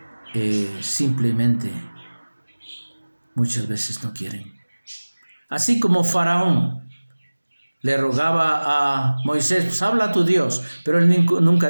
Simplemente muchas veces no quieren. Así como Faraón le rogaba a Moisés, pues habla a tu Dios, pero él nunca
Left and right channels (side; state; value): both; inverted; correlation -1.00